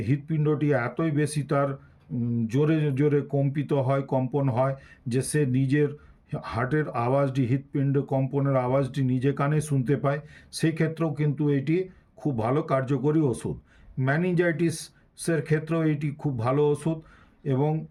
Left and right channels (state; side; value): identical; both; correlation 1.00